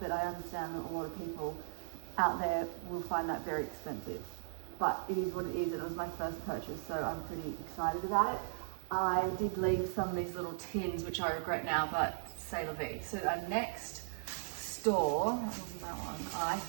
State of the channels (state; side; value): silent; left; digital silence